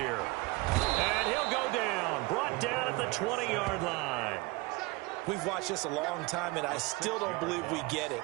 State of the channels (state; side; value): quieter; left; 23.6 dB